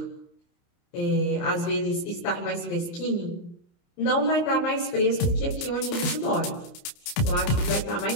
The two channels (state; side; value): late; right; 29 ms